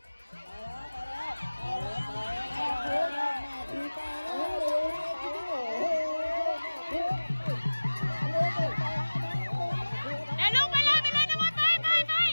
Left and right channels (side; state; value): both; inverted; correlation -1.00